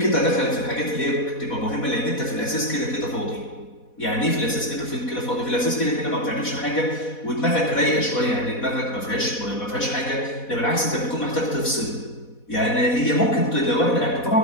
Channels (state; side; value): late; right; 4.1 ms